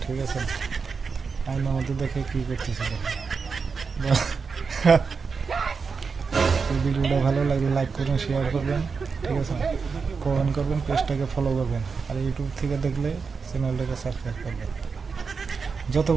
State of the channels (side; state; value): left; quieter; 5.2 dB